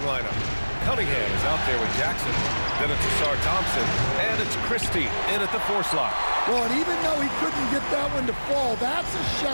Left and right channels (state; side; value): inverted; both; correlation -1.00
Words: lineup. Cunningham is out there with Jackson. Then it's Ausar Thompson. And it's Christie in at the 4 slot. Well, and even though he couldn't get that one to fall, that's a